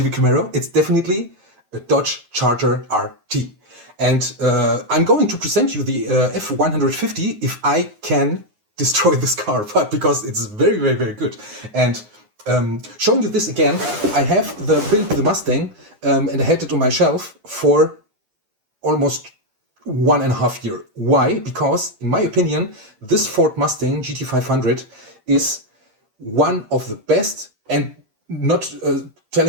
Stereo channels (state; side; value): late; left; 9.6 ms